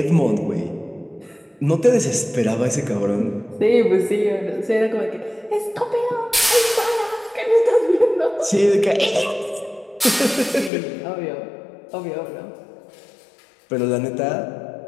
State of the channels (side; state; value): right; drops out; at 10.7 s